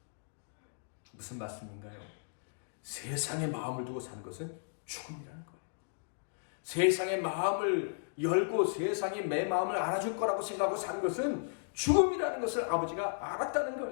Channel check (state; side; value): silent; right; digital silence